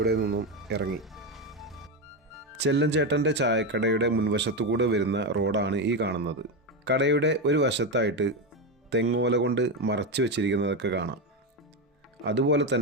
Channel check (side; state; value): both; normal; correlation 0.12